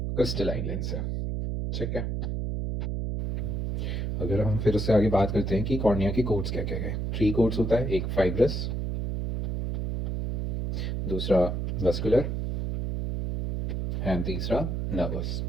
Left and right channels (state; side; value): noise; right; hum, 1 dB below the sound